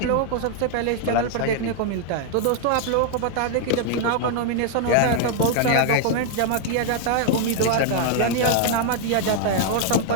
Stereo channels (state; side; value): different; both; correlation 0.00